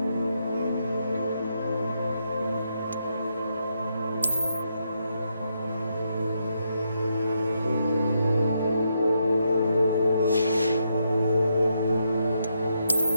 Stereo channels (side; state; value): both; inverted; correlation -0.80